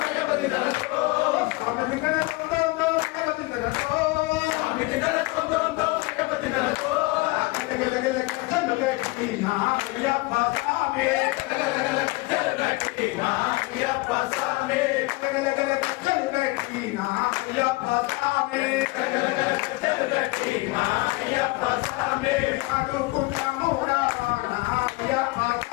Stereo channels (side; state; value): right; quieter; 23.2 dB